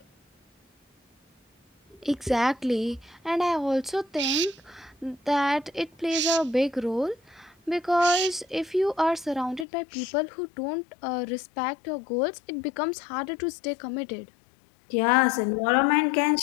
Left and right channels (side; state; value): right; drops out; at 9.7 s